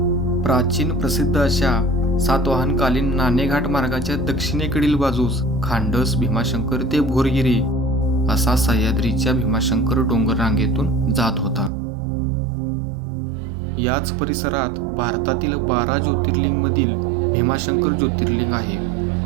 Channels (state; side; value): drops out; left; at 11.7 s